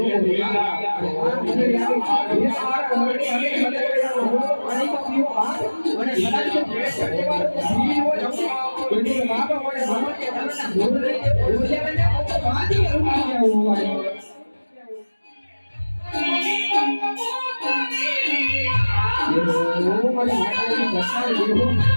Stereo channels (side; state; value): both; inverted; correlation -1.00